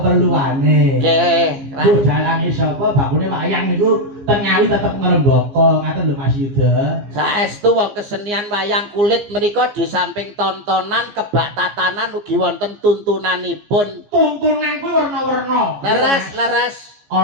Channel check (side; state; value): left; late; 14 ms